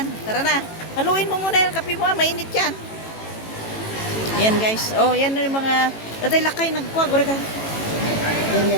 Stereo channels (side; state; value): right; late; 18 ms